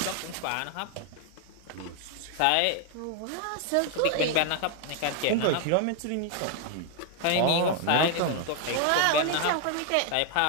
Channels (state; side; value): different; both; correlation 0.01